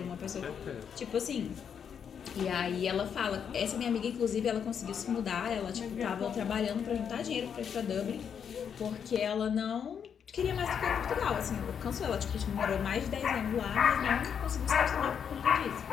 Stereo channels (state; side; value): quieter; right; 7.6 dB